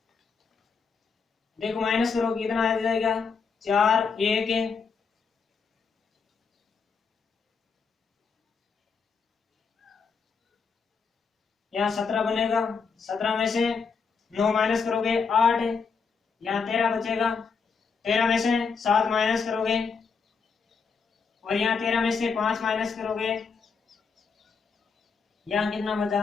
देखो माइनस करो कितना आ जाएगा 4, 1 यहाँ 17 बनेगा। 17 में से 9 माइनस करोगे 8, यहाँ 13 बचेगा। 13 में से 7 माइनस करोगे और यहाँ 13 में से 5 माइनस करोगे, यहाँ कितना बचा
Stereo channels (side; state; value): right; quieter; 5.4 dB